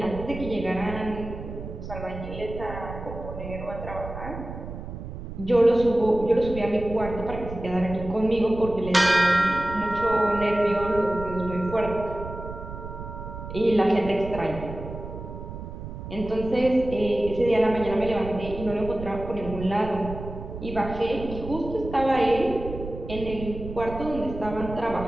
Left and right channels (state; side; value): noise; right; rumble, 10 dB below the sound